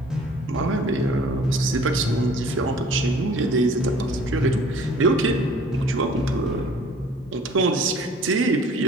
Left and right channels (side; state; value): both; normal; correlation 0.50